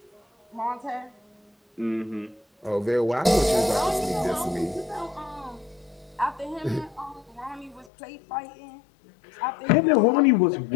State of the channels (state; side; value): drops out; right; at 7.9 s